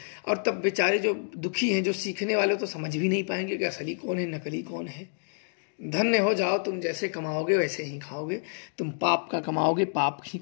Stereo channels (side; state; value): right; silent; digital silence